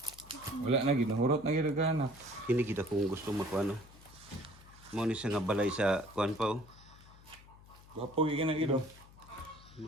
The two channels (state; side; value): noise; left; hum, 22 dB below the sound